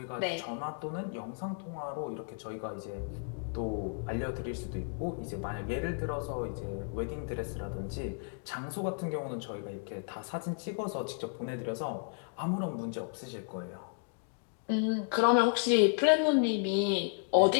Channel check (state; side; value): quieter; right; 39.8 dB